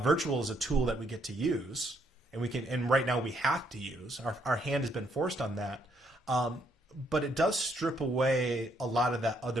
is a tool that we get to use, and right now we have to use. Our hand has been forced on that. But it does strip away a lot of that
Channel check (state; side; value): normal; both; correlation 0.71